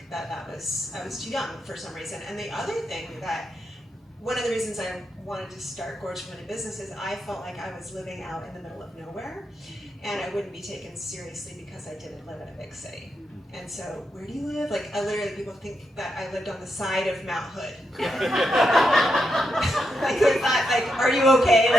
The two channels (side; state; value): both; normal; correlation 0.83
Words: I was too young for some reason. And the other thing one of the reasons I wanted to start Gorge Women in Business is I felt like I was living out in the middle of nowhere, and I wouldn't be taken seriously because I didn't live in a big city. And so, where do you live? Like, people think that I lived on the side of Mount Hood. Like, they thought, like, are you okay?